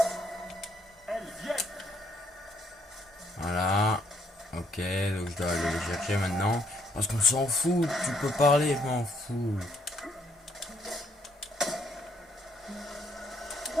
Elles viennent. Voilà. Ok, donc je dois aller les chercher maintenant. Parce qu'on s'en fout, tu peux parler, je m'en fous.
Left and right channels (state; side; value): normal; both; correlation 0.70